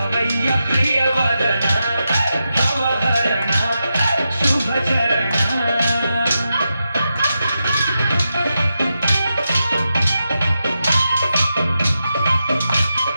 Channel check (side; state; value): both; inverted; correlation -0.88